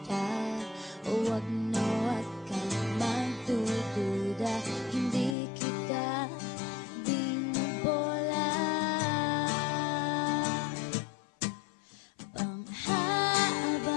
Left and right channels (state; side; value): drops out; right; at 5.4 s